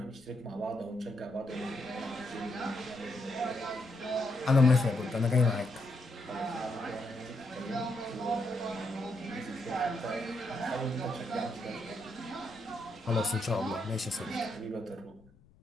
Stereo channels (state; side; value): noise; left; rumble, 28 dB below the sound